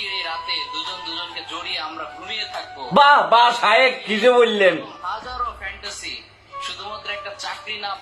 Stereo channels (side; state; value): both; identical; correlation 1.00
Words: এই রাতে দুজন দুজনকে জড়িয়ে আমরা ঘুমিয়ে থাকবো। বাহ বাহ শায়েক, কি যে বললেন। হাজারো ফ্যান্টাসি শুধুমাত্র একটা চাকরি না